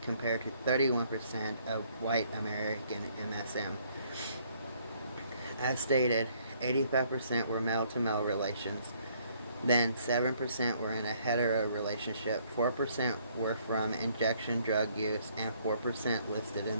compared to 31% of white American MSM. As stated, 85% were male-to-male relations. Then 7% were in a hetero relationship, 4% were from injection drug use, and 4% listed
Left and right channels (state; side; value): inverted; both; correlation -0.65